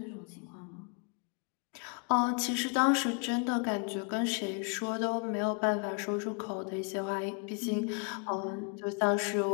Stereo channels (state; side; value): quieter; right; 36.3 dB